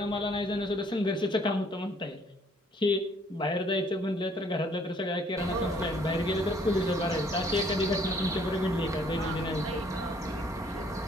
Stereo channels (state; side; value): normal; both; correlation 0.62